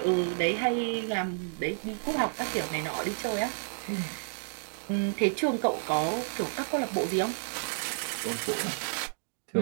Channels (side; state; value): left; silent; digital silence